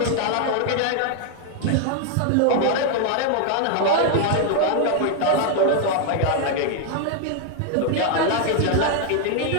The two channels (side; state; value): both; different; correlation 0.00